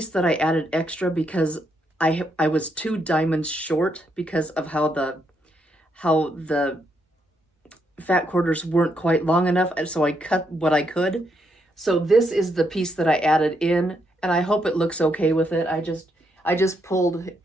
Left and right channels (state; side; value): normal; both; correlation 0.77